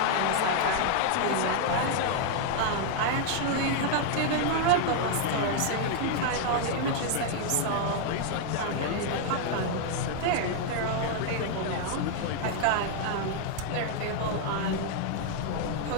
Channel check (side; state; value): both; different; correlation 0.00